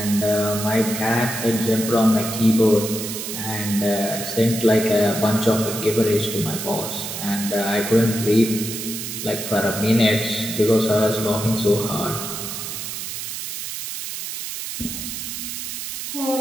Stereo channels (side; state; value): right; noise; hiss, 6 dB below the sound